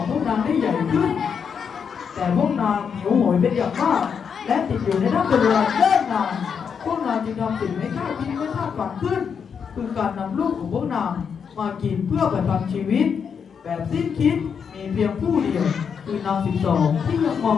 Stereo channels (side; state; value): right; quieter; 6.8 dB